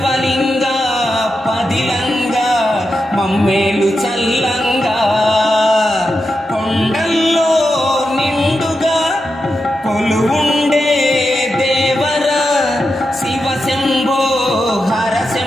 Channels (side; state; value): both; normal; correlation 0.88